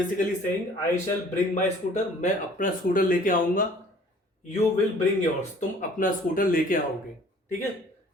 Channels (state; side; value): normal; both; correlation 0.53